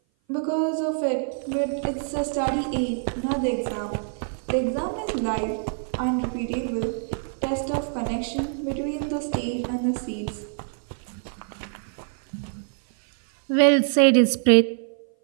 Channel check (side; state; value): left; silent; 57 dB below the other